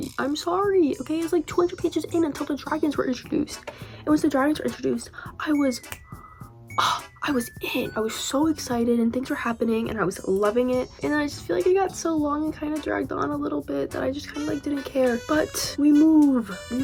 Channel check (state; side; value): identical; both; correlation 1.00